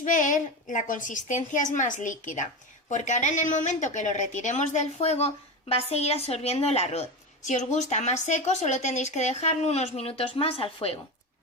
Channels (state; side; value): normal; both; correlation 0.21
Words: ver, la consistencia es más líquida, porque ahora en el momento que lo retiremos del fuego va a seguir absorbiendo el arroz. Si os gusta más seco, solo tendréis que dejarlo unos minutos más al fuego.